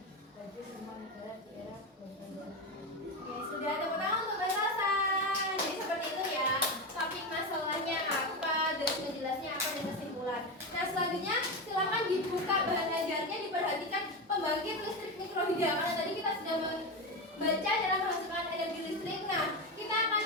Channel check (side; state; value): both; normal; correlation 0.17